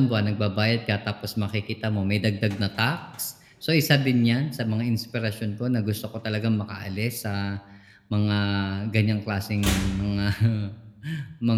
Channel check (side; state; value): both; identical; correlation 1.00